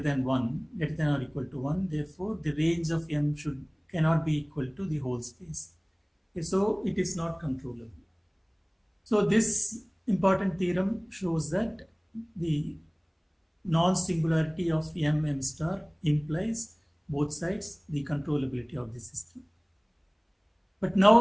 1, greater than or equal to 1. Therefore, the range of m cannot be equal to the whole space. Okay, so it is not controllable. So this important theorem shows that the non-singularity of m star implies both sides the controllability of the system. But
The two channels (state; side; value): identical; both; correlation 1.00